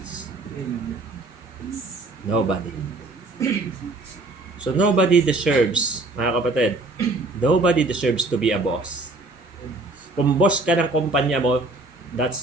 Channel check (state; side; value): quieter; left; 3.0 dB